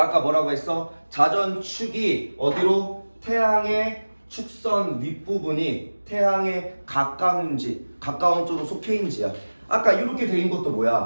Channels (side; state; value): both; inverted; correlation -1.00